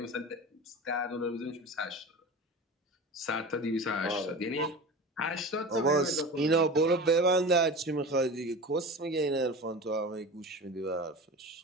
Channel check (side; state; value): both; normal; correlation 0.31